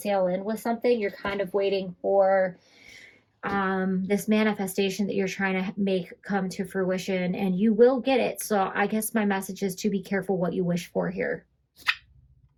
in with something. You're kind of waiting for this manifestation that you're trying to make come to fruition, and you will get it. So I guess my message is to be careful what you wish for here.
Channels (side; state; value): both; identical; correlation 1.00